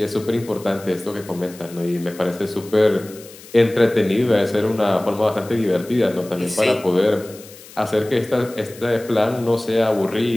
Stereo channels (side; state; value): left; noise; hiss, 20 dB below the sound